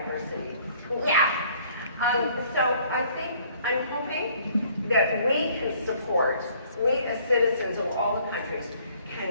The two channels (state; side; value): inverted; both; correlation -0.59